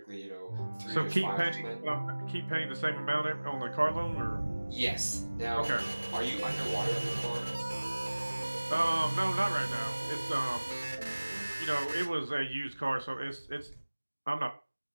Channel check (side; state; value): both; inverted; correlation -1.00